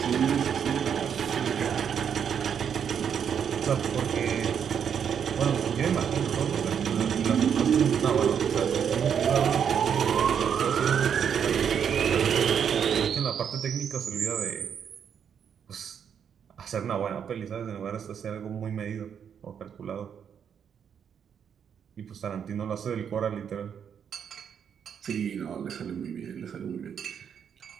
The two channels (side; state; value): left; quieter; 7.9 dB